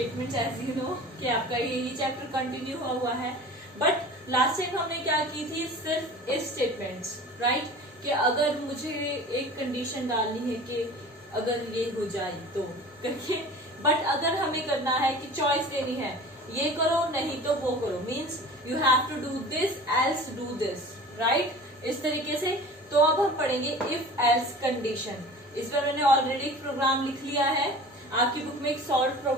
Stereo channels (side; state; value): both; normal; correlation 0.40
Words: As you know कि आपका यही चैप्टर कंटिन्यू हुआ है, बट लास्ट टाइम हमने क्या की थी, सिर्फ इफ स्टेटमेंट्स, राइट? कि अगर मुझे एक कंडीशन डालनी है कि अगर ये हो जाए तो करके, बट अगर हमें करना है कि चॉइस देनी है, ये करो नहीं तो वो करो, means you have to do this else do this, right? इस तरीके से। तो अब हम पढ़ेंगे इफ एल्स कंडीशन। इस बार मैंने ऑलरेडी एक प्रोग्राम लिख लिया है, आपकी बुक में एक सॉल्व